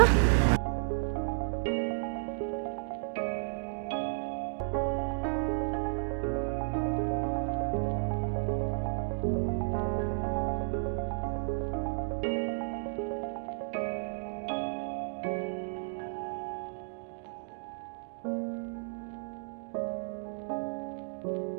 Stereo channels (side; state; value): left; silent; digital silence